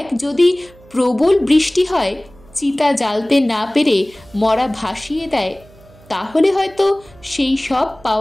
যদি প্রবল বৃষ্টি হয়, চিতা জ্বালতে না পেরে মরা ভাসিয়ে দেয়, তাহলে হয়তো সেই সব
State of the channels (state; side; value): noise; right; hum, 26 dB below the sound